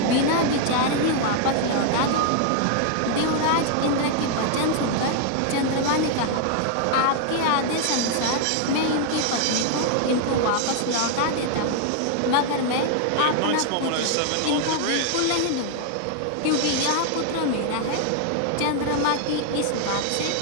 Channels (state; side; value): different; both; correlation 0.00